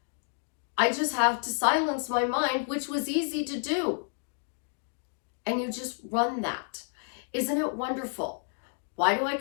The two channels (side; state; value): right; silent; 58 dB below the other